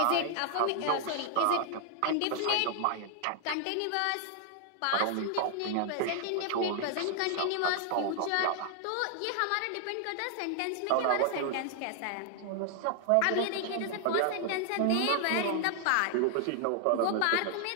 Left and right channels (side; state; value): both; different; correlation 0.00